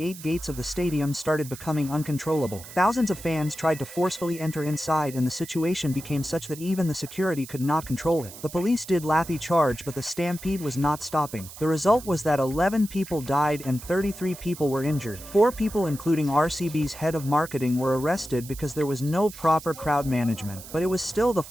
8 gates of the stadium started becoming uncontrollable. Thousands of fans tried to forcefully enter inside, and the situation became such that even the security could not control it. The police did lathi charge, but the stampede was not stopping. The result was that 11 people died and 33 people were injured. 4 people, including RCB's head of marketing, were arrested because there was no proper crowd management. But it was still the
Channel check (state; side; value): noise; right; hiss, 15 dB below the sound